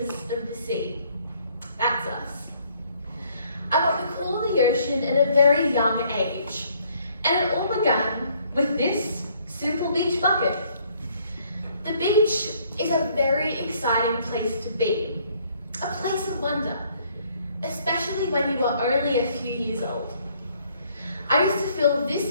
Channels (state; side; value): inverted; both; correlation -0.64